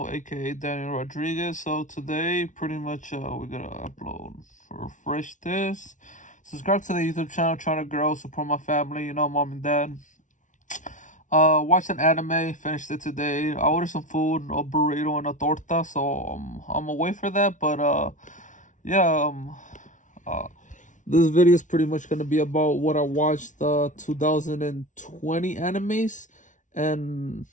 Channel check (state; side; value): late; right; 0.37 ms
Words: aka Daniel Rodriguez. So today, pretty much, we're gonna upload, refresh this, subscribe to the YouTube channel, trying to grow, support my family, mom and dad. Watched an anime, finished it today. I ordered some food, a burrito and a torta, so I'm away for that. But yeah, uh, this video is pretty much gonna be about what I watched 2020 animes, and